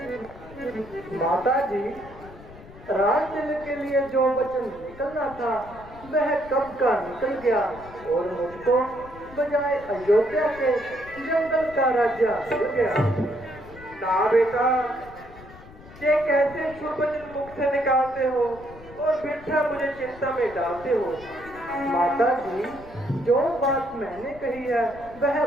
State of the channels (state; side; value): noise; left; rumble, 19 dB below the sound